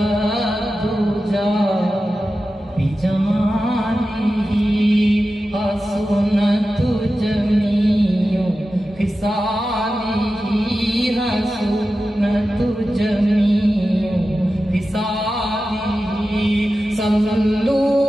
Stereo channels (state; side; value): normal; both; correlation 0.93